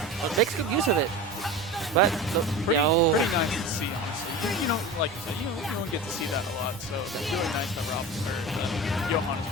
makes good use of it. But pretty nice to see, honestly. You know, like you said, you don't get to see that a lot, so it's really nice that Johan is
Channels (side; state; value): both; normal; correlation 0.31